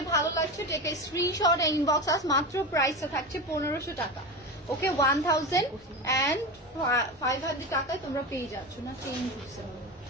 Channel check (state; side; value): normal; both; correlation 0.22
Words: ভালো লাগছে take a screenshot inbox us. মাত্র প্রাইসটা থাকছে 1500 টাকা। ওকে, 1500 টাকায় তোমরা পেয়ে যাচ্ছ না, চেঞ্জ হচ্ছে।